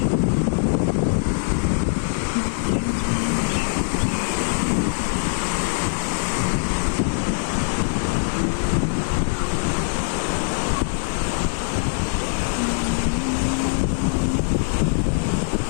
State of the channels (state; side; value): silent; right; 59 dB below the other